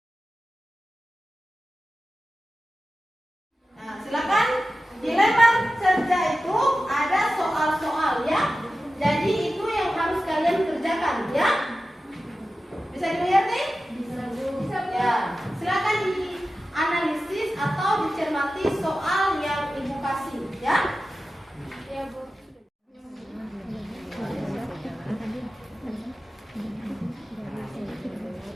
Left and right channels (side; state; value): both; normal; correlation 0.94